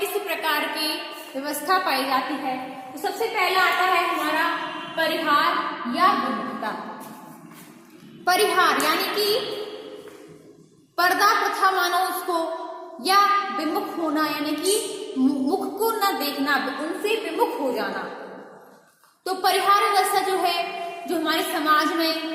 प्रकार की व्यवस्था पाई जाती है। तो सबसे पहला आता है हमारा परिहार या विमुखता। परिहार यानी कि पर्दा प्रथा मानो उसको, या विमुख होना, यानी कि मुख को न देखना, उनसे विमुख हो जाना। तो परिहार व्यवस्था जो है, जो हमारे समाज में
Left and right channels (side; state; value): both; identical; correlation 1.00